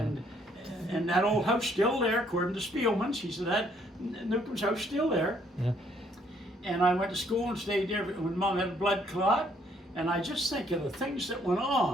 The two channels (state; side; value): normal; both; correlation 0.67